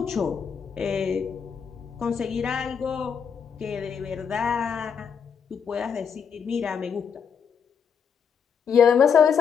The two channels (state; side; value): quieter; right; 6.9 dB